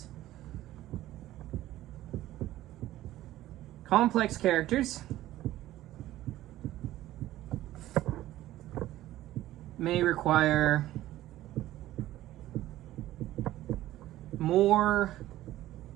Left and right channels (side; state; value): left; quieter; 14.9 dB